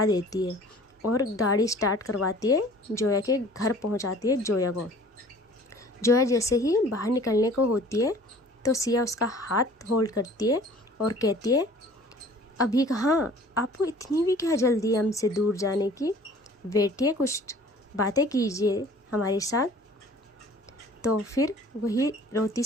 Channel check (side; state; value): both; normal; correlation 0.49